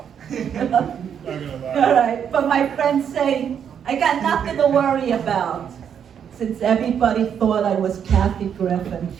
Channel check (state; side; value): quieter; left; 8.2 dB